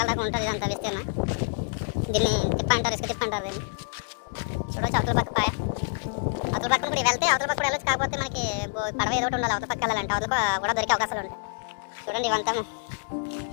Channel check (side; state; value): right; silent; digital silence